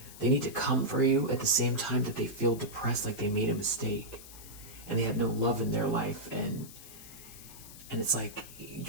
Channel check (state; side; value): noise; left; hiss, 16 dB below the sound